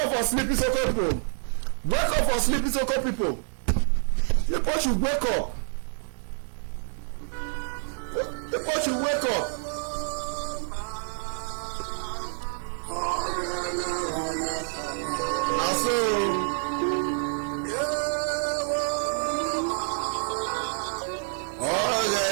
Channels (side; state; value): left; silent; digital silence